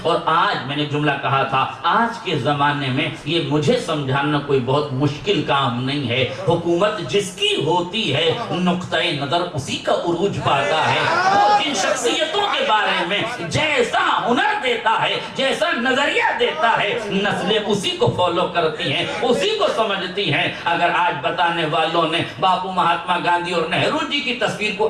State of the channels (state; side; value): identical; both; correlation 1.00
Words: اور آج میں نے جملہ کہا تھا، آج کے زمانے میں یہ مجھے سمجھانا کوئی بہت مشکل کام نہیں ہے۔ حکومت جس کی ہوتی ہے نقطۂ نظر اسی کا عروج پاتا ہے۔ وہ جن شخصیتوں کے بارے میں جیسا ہنر دیتا ہے، جیسا نظریہ دیتا ہے، نسلیں اسی کو فالو کرتی ہیں، اسی کو سمجھتی ہیں۔ اگر آج بتانے والوں نے باپو، مہاتما گاندھی اور نہرو جی کی تصویر کو